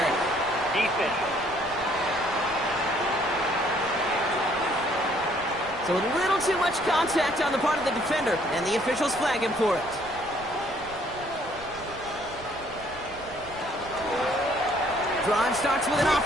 Defense. So a little too much contact on the part of the defender, and the officials flag him for it. Drive starts with an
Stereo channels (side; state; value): right; noise; rumble, 19 dB below the sound